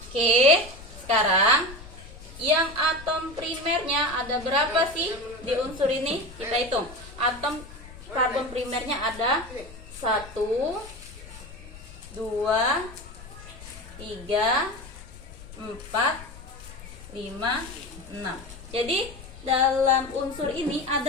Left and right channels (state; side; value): noise; left; rumble, 16 dB below the sound